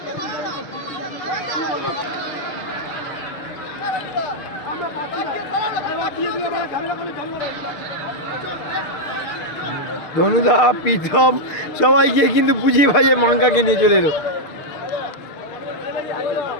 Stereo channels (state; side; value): late; right; 6.6 ms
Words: ধনুদা প্রীতম সবাই গিয়ে কিন্তু বুঝিয়ে ভাজিয়ে মাঙ্কাকে নিয়ে চলে এলো।